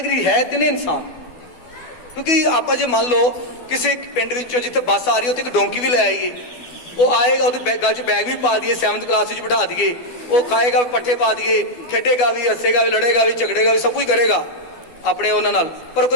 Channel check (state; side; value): late; right; 12 ms